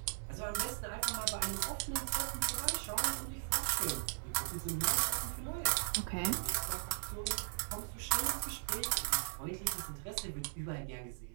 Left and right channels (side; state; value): left; silent; digital silence